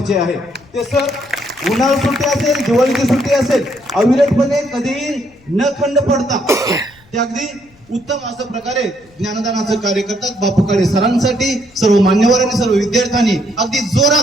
आहे. ते सर उन्हाळी सुट्टी असेल, दिवाळीची सुट्टी असेल, अविरतपणे कधीही न खंड पडता ते अगदी उत्तम अशा प्रकारे ज्ञानदानाचं कार्य करतात. बापू काळे सरांसाठी सर्व मान्यवरांनी, सर्व विद्यार्थ्यांनी अगदी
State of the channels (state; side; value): noise; left; rumble, 29 dB below the sound